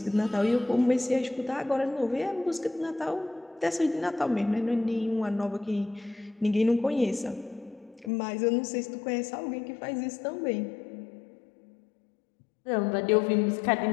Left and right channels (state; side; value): drops out; right; at 8.1 s